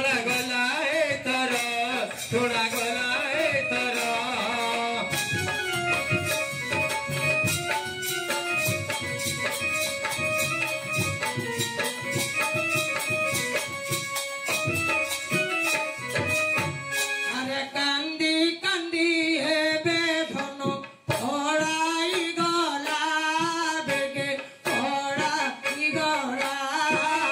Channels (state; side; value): identical; both; correlation 1.00